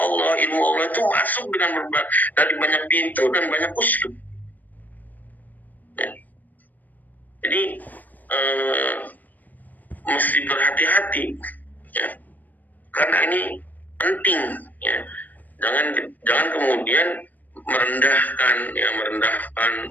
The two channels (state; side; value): late; right; 0.084 ms